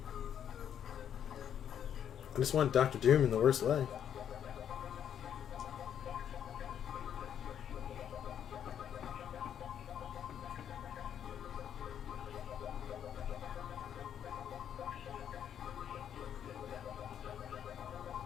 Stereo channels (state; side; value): quieter; right; 9.2 dB